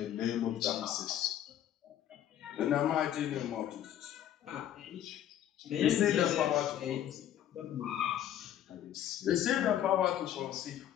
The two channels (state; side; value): quieter; right; 11.2 dB